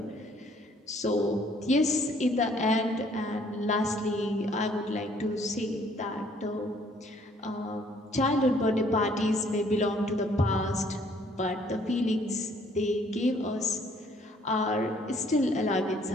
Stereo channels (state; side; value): normal; both; correlation 0.62